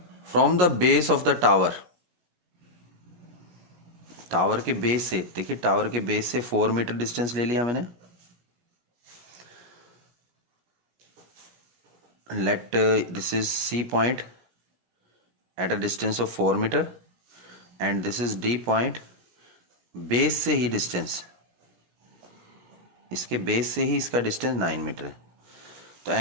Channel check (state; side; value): late; left; 17 ms